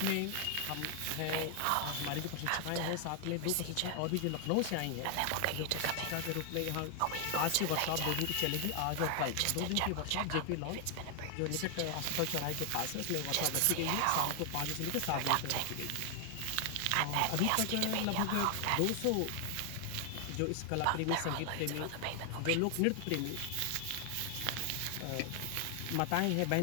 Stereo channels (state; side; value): different; both; correlation 0.00